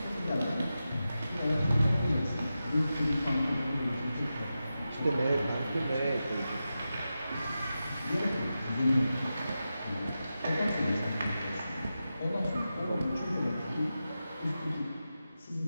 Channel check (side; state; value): both; inverted; correlation -0.91